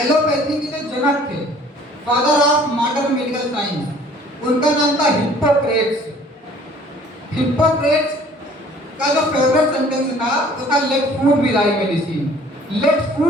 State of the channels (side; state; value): both; normal; correlation 0.53